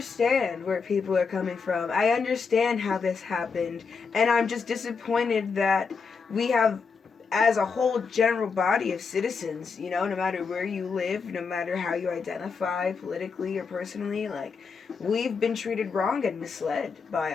where people are coming from. I understand how this happened, and I'm just disappointed that we have, as a whole general body of citizens, no matter where you live, no matter how you identify politically or personally, we've been treated wrong and misled by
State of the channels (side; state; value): right; quieter; 5.3 dB